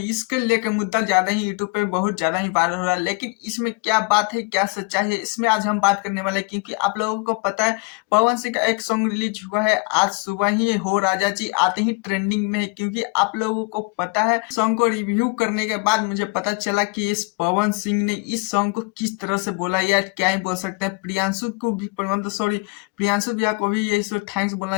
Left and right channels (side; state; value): right; quieter; 28.8 dB